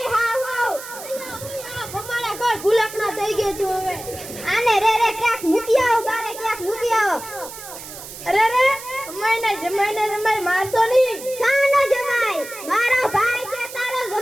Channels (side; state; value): right; noise; hiss, 13 dB below the sound